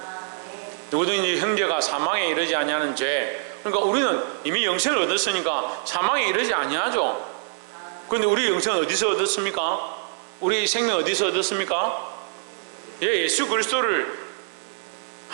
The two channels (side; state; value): left; silent; digital silence